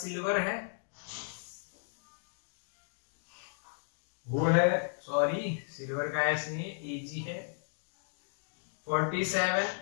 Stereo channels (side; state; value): right; silent; digital silence